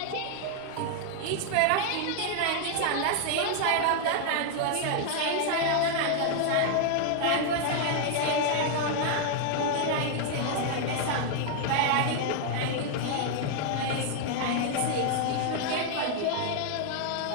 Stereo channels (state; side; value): different; both; correlation 0.00